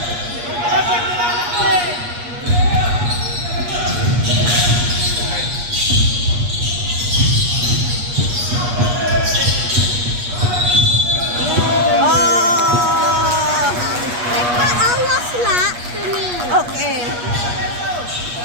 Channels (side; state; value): left; late; 8.4 ms